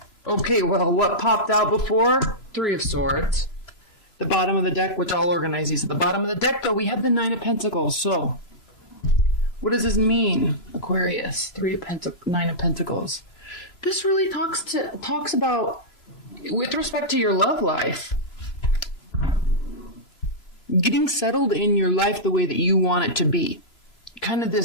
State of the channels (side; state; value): right; late; 3.0 ms